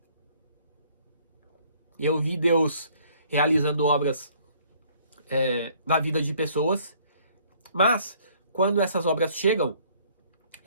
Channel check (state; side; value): inverted; both; correlation -0.61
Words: Eu vi Deus realizando obras na vida de pessoas, mas quando essas obras chegam,